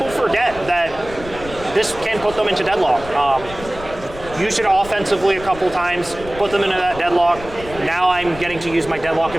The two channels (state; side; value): noise; left; rumble, 15 dB below the sound